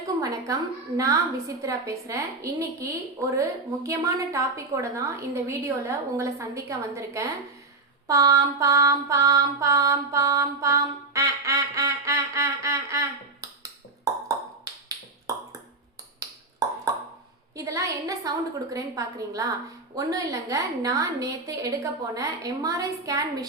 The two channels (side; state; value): left; quieter; 3.5 dB